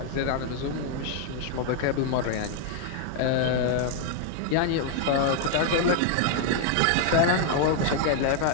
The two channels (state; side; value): different; both; correlation 0.00